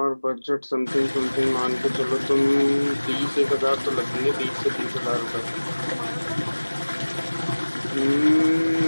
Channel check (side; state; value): both; inverted; correlation -1.00